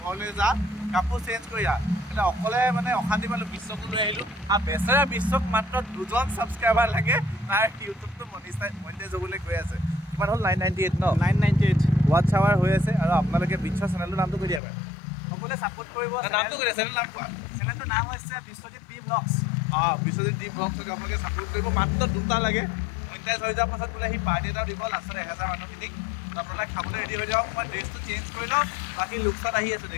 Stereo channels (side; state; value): right; drops out; at 14.6 s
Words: ঘৰলৈ যা, কাপোৰ চেঞ্জ কৰি আহ। মানে অকলে মানে অশান্তি পালোঁ, বিশ্বকো লৈ আহিলোঁ। আৰু বেচেৰা বিশ্বক মাত্ৰ 2জন ছাবস্ক্ৰাইবাৰ লাগে, তাৰ ইউটিউবটো মনিটাইজ হ'বলৈ গৈ আছে। কিমান হ'ল? 998 ন? 998 ৱাটছ আৱাৰ হৈ আছে। আৰু আপোনালোকে বিশ্বৰ চেনেলটোৰ নামটো কৈ দিয়া বাৰু, সকলোৱে ছাপোৰ্ট কৰিব। নামটো কৈ দিয়া, চেনেল নাম কোৱা। চেনেলটোৰ নাম হৈছে Biswajit B blogs. Biswajit B ব্লগছক আপোনালোকে ছাপোৰ্ট কৰিব। মাত্ৰ 2টা লাগে, মনিটাইজ হৈ যোৱাৰ পাছত বোলে সি পাৰ্টি এটাও দিব লাষ্টত 1000 মানুহখিনিক। আপোনালোকে খাবলৈ ৰেডি হৈ যাওক, মই ড্ৰেছটো চেঞ্জ কৰি লওঁ, বাকী লুকছত আহি আছোঁ,